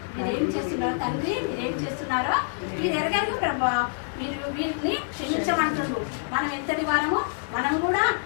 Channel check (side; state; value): right; silent; digital silence